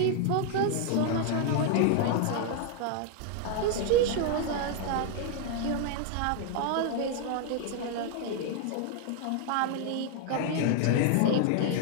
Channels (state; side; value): different; both; correlation 0.00